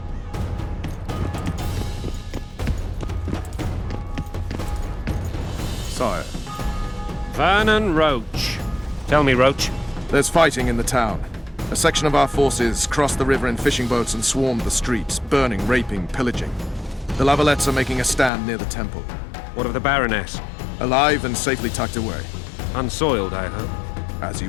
Sire, Vernon Roach. Tell me, Roach. there's fighting in the town. A section of our forces crossed the river in fishing boats and swarmed the streets, burning, raping, pillaging. The La Valettes are making a stand near the temple. What of the Baroness? Alive and safely tucked away. Unsoiled, I hope. As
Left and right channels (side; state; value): right; drops out; at 18.3 s